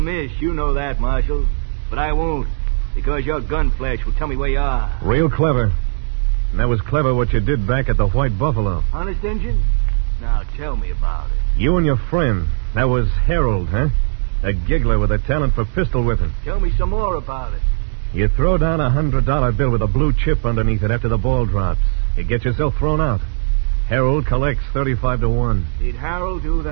You know that, Marshal. But I won't, because your gun flash will tell me where you are. Real clever. And that was clever what you did back at the White Buffalo. Honest, Injun? Now tell me about it. You and your friend. That was Harold, huh? A giggler with a talent for pistol whipping. Tell me some more about it. You throw down a $100 bill with a blue chip underneath it after the ball drops. You get yourself thrown out. Harold collects 35 to 1. Did Harold do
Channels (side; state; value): left; silent; digital silence